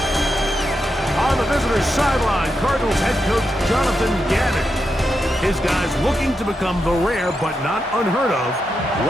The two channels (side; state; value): both; normal; correlation 0.86